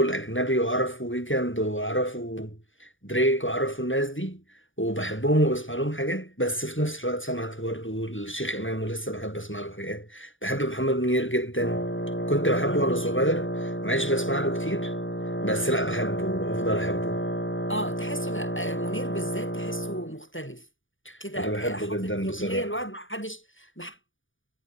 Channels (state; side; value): late; right; 0.57 ms